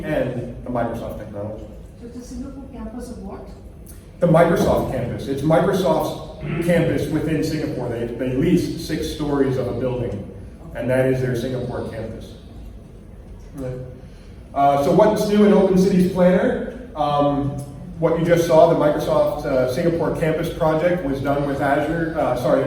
and the Microsoft technology. So the Singapore campus of what? The Microsoft campus. It's Microsoft's campus within Singapore. They lease 6 stories of a building, and that is their Singapore campus. So what's new in Open Cities Planner? What you just saw, the Microsoft Singapore campus project was done with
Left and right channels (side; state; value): both; identical; correlation 1.00